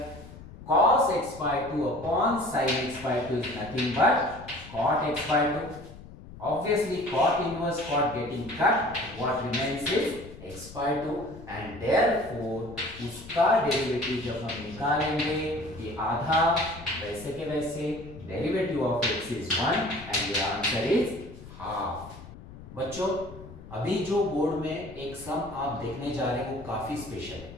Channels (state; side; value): noise; left; rumble, 16 dB below the sound